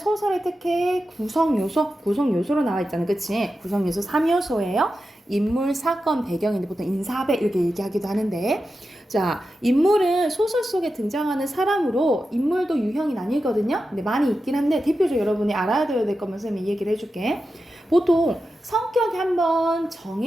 특히 구성 요소로 나와 있잖아요. 그치? 구성 요소 3요소예요. 인물, 사건, 배경인데 보통 인사배 이렇게 얘기하기도 하는데, 자, 인물은 소설 속에 등장하는 사람으로 인물도 유형이 나뉘거든요. 근데 많이 있긴 한데 대표적으로 여러분이 알아야 될 거면 선생님이 얘기를 해줄게. 보통 성격이 한번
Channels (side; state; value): both; normal; correlation 0.91